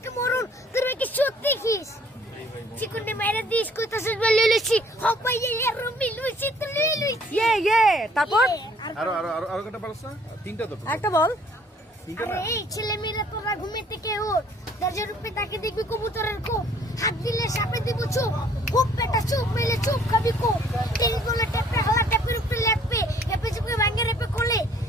মরুন তোর ভাইকে সত্যি খিস চিকুনে মাইরা দিস কইতাছিস বলে লইছি হপাই এর রুমি লইছি তো লইছি তারপর আরো কটা পারছ না? তিনটা তো একটা বল। তিনটা আরে না? এই ছেলে মেয়েরা তোরা ঘুমে থেকে ওঠ দরজার উপরে তাকে দেখবি কবুতরের কোপ হাত দিলে সাপে দিব চোখ খুব পেটা চোখ মেলে চোখ খাবি কোপ তিন গোলে টেপে হালা টেপের উপরে লেপে লেপে চুপে ভাঙে রেপে কোলে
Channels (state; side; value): normal; both; correlation 0.59